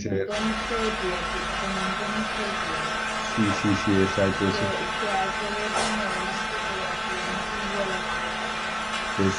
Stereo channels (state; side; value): identical; both; correlation 1.00